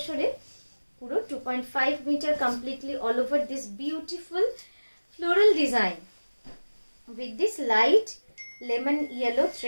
পুরো 2.5 metre completely all over this beautiful floral design with this light lemon yellow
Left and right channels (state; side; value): inverted; both; correlation -1.00